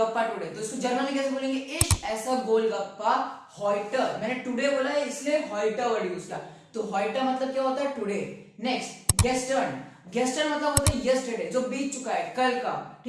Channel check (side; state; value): both; identical; correlation 1.00